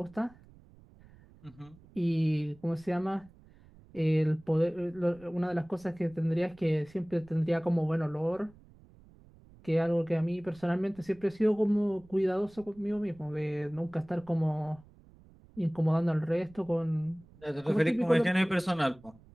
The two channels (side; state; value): right; noise; rumble, 25 dB below the sound